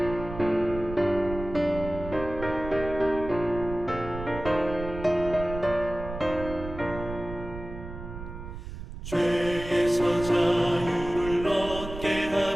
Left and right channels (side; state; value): right; noise; rumble, 10 dB below the sound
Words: 죄에서 자유를 얻게